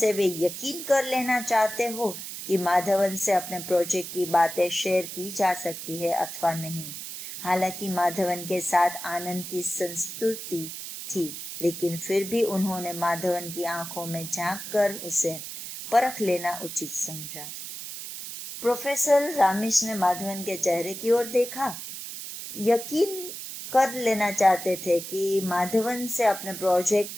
वे यकीन कर लेना चाहते हो कि माधवन से अपने प्रोजेक्ट की बातें शेयर की जा सकती है अथवा नहीं। हालांकि माधवन के साथ आनंद की संस्तुति थी, लेकिन फिर भी उन्होंने माधवन की आंखों में झांक कर उसे परख लेना उचित समझा। प्रोफेसर रामीस ने माधवन के चेहरे की ओर देखा, यकीन कर लेना चाहते थे कि माधवन से अपने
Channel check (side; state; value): right; noise; hiss, 9 dB below the sound